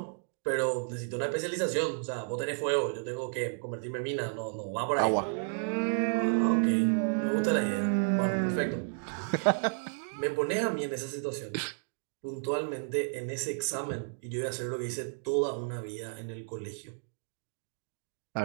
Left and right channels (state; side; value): silent; left; digital silence